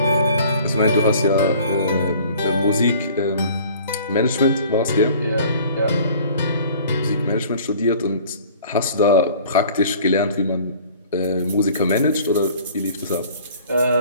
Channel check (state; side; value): inverted; both; correlation -0.50